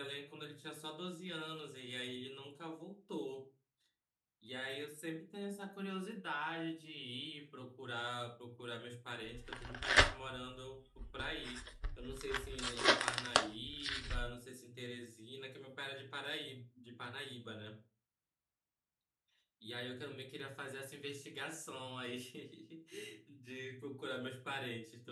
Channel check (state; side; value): identical; both; correlation 1.00